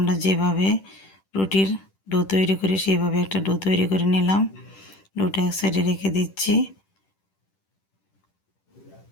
যেভাবে রুটির ডো তৈরি করি সেইভাবে একটা ডো তৈরি করে নিলাম। ডোটা এক সাইডে রেখে দিচ্ছি।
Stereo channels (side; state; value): right; late; 10 ms